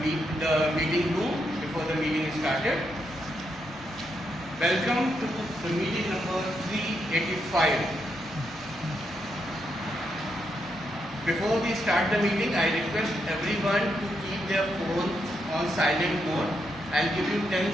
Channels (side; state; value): both; normal; correlation 0.81